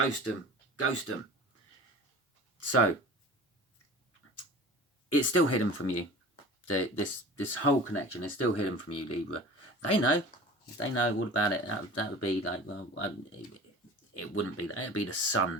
So, it's still hidden from you. This whole connection is still hidden from you, Libra. They know all about it. That would be like, well, it wouldn't be that. It would be the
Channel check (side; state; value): both; normal; correlation 0.39